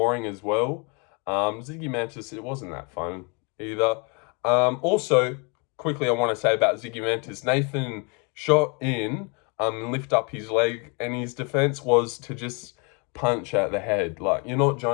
as well. Zygimantas, it wasn't that fun either. Also, quickly I want to say about Zygimantas, Nathan shot in, lift up his leg, and his defense was to just punch at the head. Like, you're not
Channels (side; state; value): right; quieter; 33.5 dB